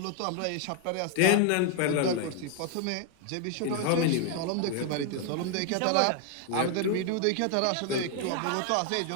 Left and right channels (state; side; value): different; both; correlation 0.00